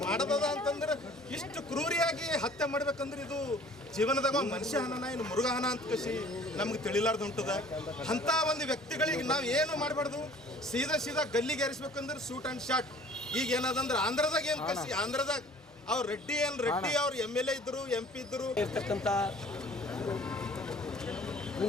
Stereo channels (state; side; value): normal; both; correlation 0.50